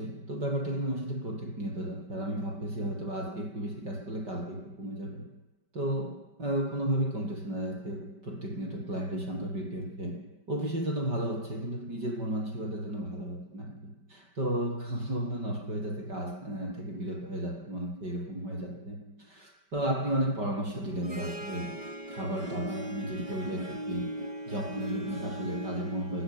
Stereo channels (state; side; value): late; left; 5.2 ms